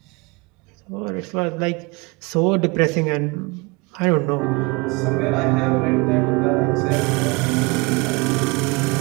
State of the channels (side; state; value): left; quieter; 27.2 dB